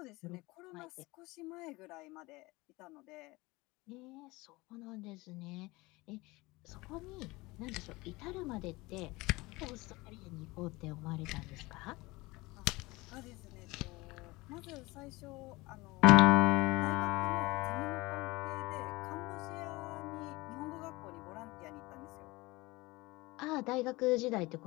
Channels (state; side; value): quieter; right; 22.1 dB